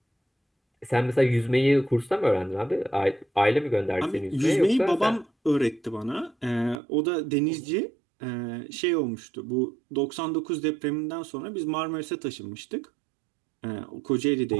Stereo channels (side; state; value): left; drops out; at 6.8 s